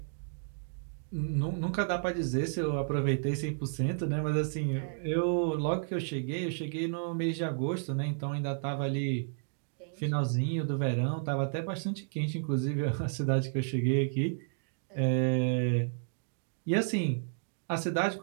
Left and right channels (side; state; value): left; silent; digital silence